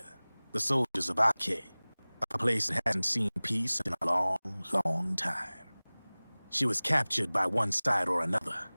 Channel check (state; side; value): inverted; both; correlation -1.00